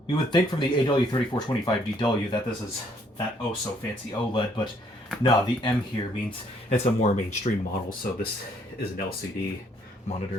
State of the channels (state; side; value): normal; both; correlation 0.66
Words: You would think from the AW3425DW that this is that oh so fancy OLED, but no, the M here means it's a more mainstream model, so this is an LCD